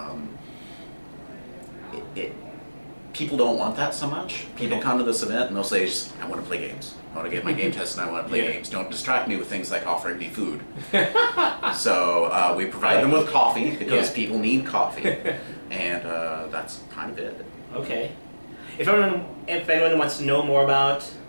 people don't want that so much. People come to this event and they'll say, I want to play games. I want to get my game test and I want to play games. Don't distract me with things like offering me food. So we provide them with coffee, because people need coffee. And that's kind of it. Okay. If anyone wants to know more about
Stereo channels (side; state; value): both; inverted; correlation -1.00